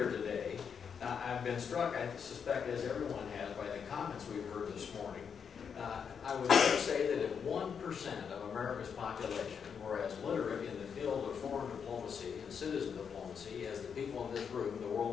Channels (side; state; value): right; quieter; 6.8 dB